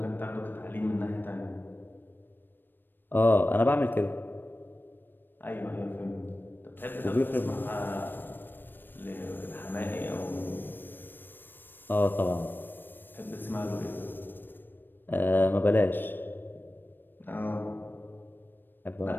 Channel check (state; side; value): late; right; 0.094 ms